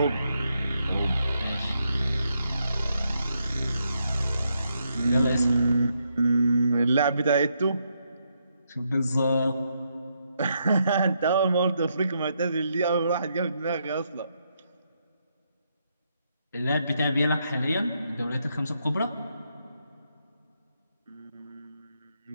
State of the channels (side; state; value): both; inverted; correlation -0.79